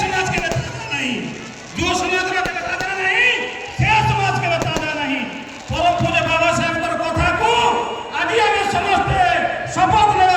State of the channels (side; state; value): both; identical; correlation 1.00